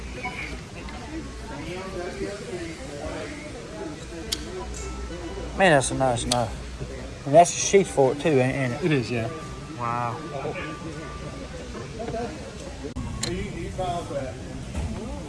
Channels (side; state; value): both; identical; correlation 1.00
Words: Man, that's a nice knife. And that's a sheath for it too, ain't it? It is, yeah. Wow.